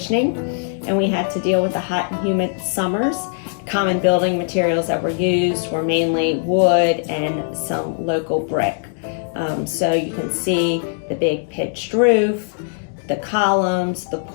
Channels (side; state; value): right; silent; digital silence